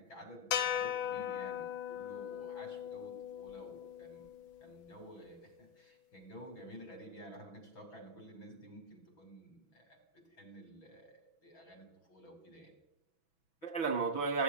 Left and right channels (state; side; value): late; right; 6.1 ms